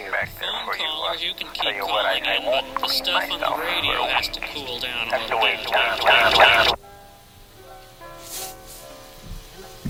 Phone callers, you can keep calling in, but the stuff on the radio has to cool down a little bit.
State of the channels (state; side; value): identical; both; correlation 1.00